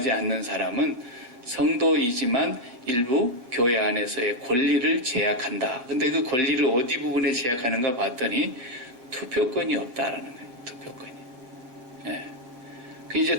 않는 사람은 성도이지만 일부 교회 안에서의 권리를 제약한다. 근데 그 권리를 어디 부분에 제약하는가 봤더니 투표권이 없다라는 거예요. 투표권이. 예. 그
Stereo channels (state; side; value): late; left; 7.7 ms